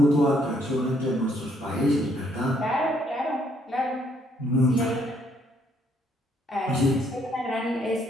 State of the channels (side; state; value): both; normal; correlation 0.69